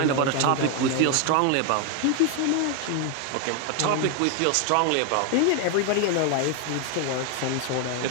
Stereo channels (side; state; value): both; different; correlation 0.01